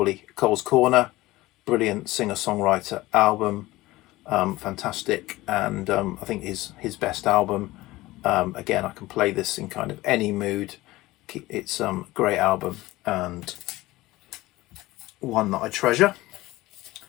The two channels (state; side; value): quieter; right; 18.6 dB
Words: Cole's Corner, brilliant singer-songwriter album, fantastic, and I think his best album. Again, I can play this in kind of any mood. It's a great album and one that I treasure.